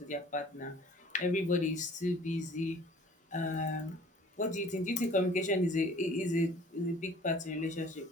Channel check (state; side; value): normal; both; correlation 0.50